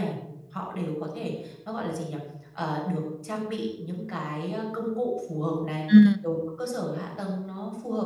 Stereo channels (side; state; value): both; identical; correlation 1.00